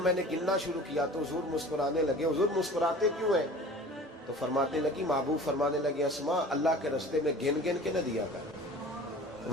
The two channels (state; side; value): normal; both; correlation 0.42